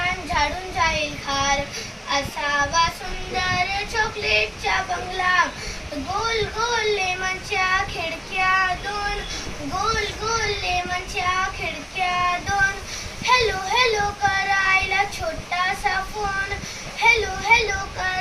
झाडून जाईल खार. असावा सुंदर चॉकलेटचा बंगला, गोल गोल लेमनच्या खिडक्या दोन, गोल गोल लेमनच्या खिडक्या दोन. हॅलो हॅलो करायला छोटासा फोन, हॅलो हॅलो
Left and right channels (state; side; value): identical; both; correlation 1.00